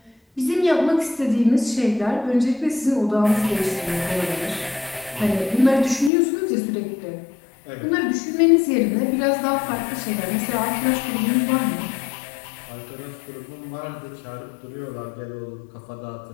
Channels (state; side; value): drops out; right; at 6.1 s